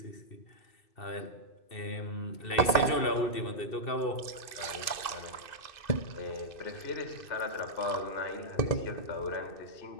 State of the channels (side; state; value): right; late; 2.6 ms